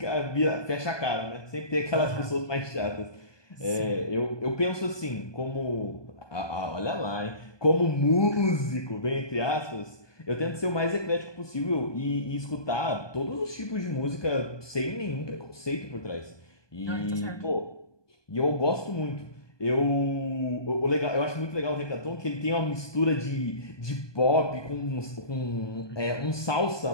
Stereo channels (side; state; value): right; late; 1.2 ms